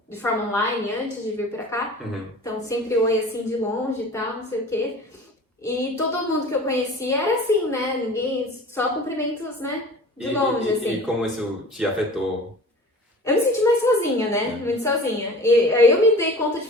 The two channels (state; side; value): normal; both; correlation 0.41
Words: de forma online antes de vir pra cá. Então sempre oi assim de longe e tal, não sei o quê. E todo mundo que eu conhecia era assim, né? Ninguém, só cumprimentos, né? De longe, assim. E como isso te afetou? Eu me senti mais sozinha, né? Muito sozinha. E aí eu me dei conta de,